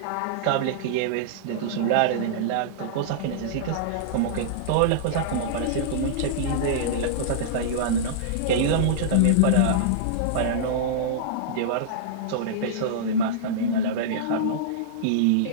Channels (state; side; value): different; both; correlation -0.03